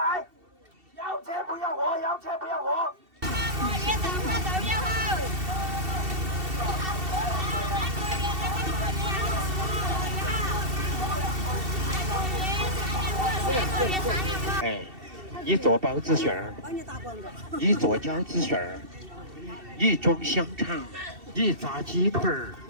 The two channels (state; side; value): late; left; 2.7 ms